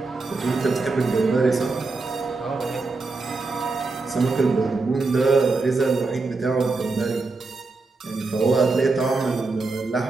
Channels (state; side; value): quieter; left; 3.8 dB